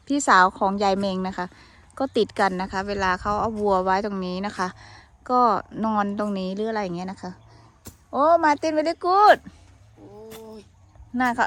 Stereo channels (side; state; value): both; identical; correlation 1.00